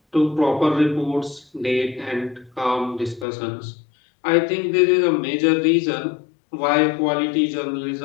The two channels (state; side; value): drops out; right; at 3.2 s